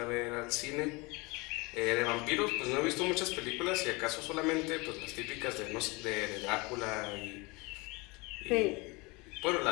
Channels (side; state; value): right; quieter; 26.1 dB